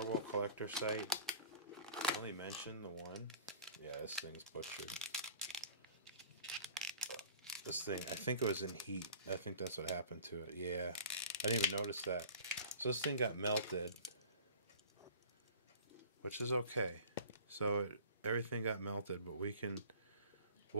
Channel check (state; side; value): inverted; both; correlation -0.43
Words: World Collector site, I only mentioned the one. Yeah, this thing's butchered. This thing, I think it was in heat. I think that's what happened to it. Yeah, I didn't even notice that. So this thing got melted, which is okay. So everything got melted, but